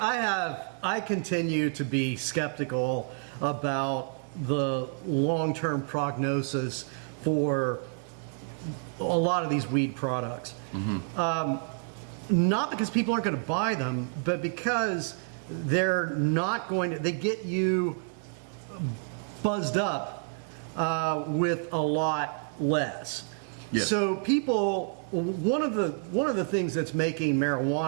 continue to be skeptical about the long-term prognosis for a lot of these weed products. Not because people aren't going to buy them, but because they're not going to. They get you buzzed up with a lot less. Yes. So people, one of the things that's making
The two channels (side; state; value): left; silent; 58 dB below the other